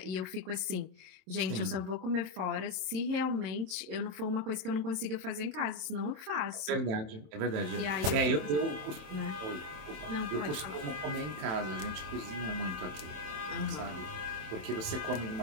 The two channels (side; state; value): left; late; 27 ms